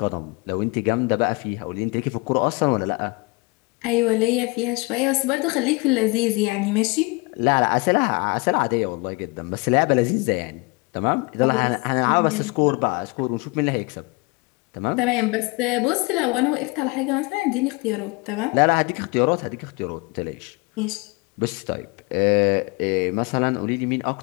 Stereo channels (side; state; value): right; quieter; 27.0 dB